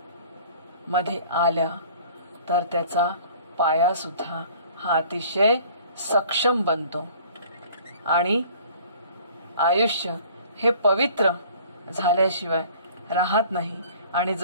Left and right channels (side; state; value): both; inverted; correlation -0.51